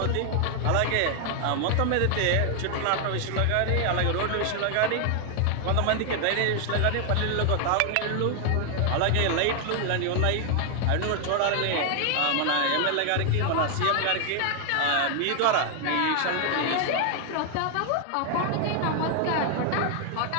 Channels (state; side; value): different; both; correlation 0.00